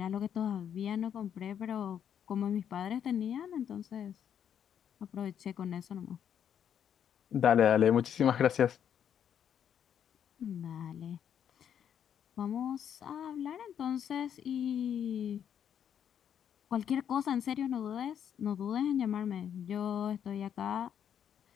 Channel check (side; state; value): right; quieter; 8.9 dB